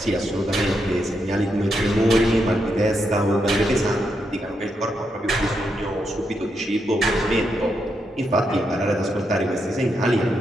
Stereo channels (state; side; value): normal; both; correlation 0.82